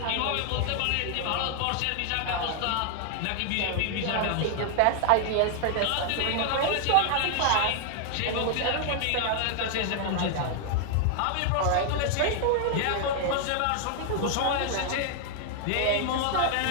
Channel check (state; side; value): different; both; correlation 0.00